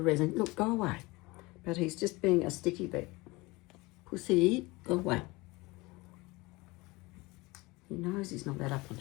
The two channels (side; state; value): right; quieter; 22.9 dB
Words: resin. Look, go away. But he's just being a sticky bit. Pussy, go away. He knows he's not that up on